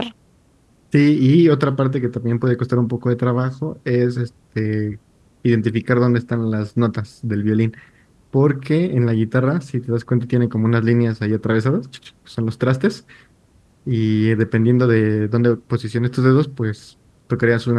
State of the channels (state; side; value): identical; both; correlation 1.00